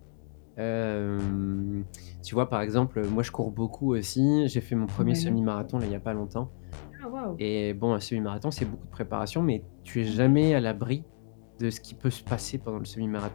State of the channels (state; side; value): silent; right; digital silence